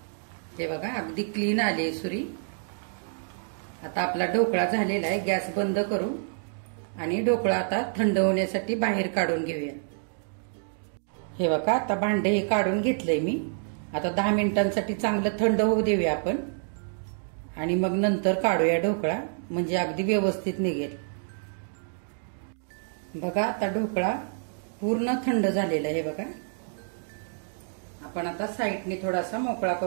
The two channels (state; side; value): silent; left; digital silence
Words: हे बघा, अगदी क्लीन आली सुरी. आता आपला ढोकळा झालेला आहे. गॅस बंद करू आणि ढोकळा आता थंड होण्यासाठी बाहेर काढून घेऊया. हे बघा, आता भांडे हे काढून घेतलंय मी. आता 10 मिनिटांसाठी चांगलं थंड होऊ देऊया आपण आणि मग नंतर काढूया ढोकळा, म्हणजे अगदी व्यवस्थित निघेल. बघा, आता ढोकळा पूर्ण थंड झालेला आहे. बघा, आपण आता साईडने थोडासा मोकळा